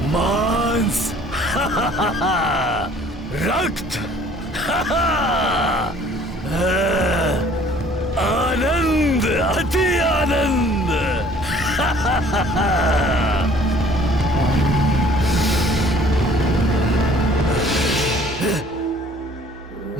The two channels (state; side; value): normal; both; correlation 0.54